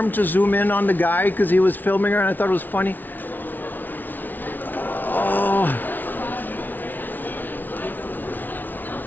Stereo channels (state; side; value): late; right; 0.086 ms